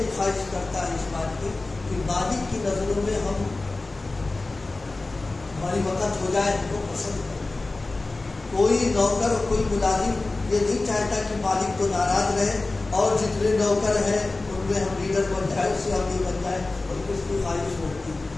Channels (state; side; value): quieter; right; 3.3 dB